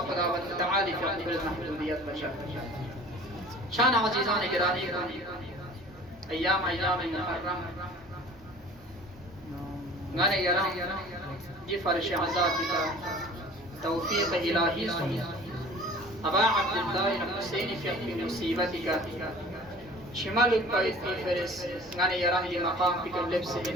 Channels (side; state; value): both; normal; correlation 0.45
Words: خداوند تعالی فی اقبل محدودیت بشا شان عزیزان گرامی ایام محرم گانے گرام دی فرش عذاب کا توفیق الہی سن أبا عبد الله الحسين في مصيبتك شمال الطريق في فرس غني يراه لمقام في اللبس